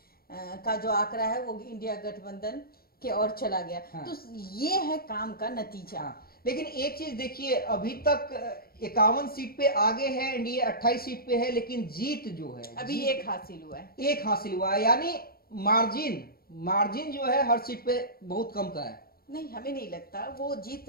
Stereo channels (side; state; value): right; late; 0.44 ms